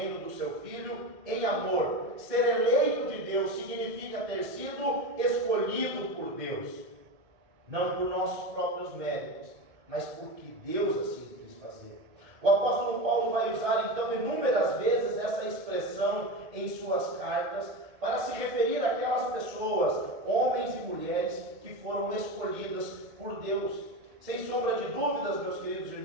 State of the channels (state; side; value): late; left; 1.6 ms